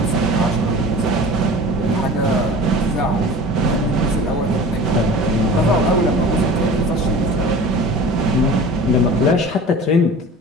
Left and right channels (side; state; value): both; normal; correlation 0.39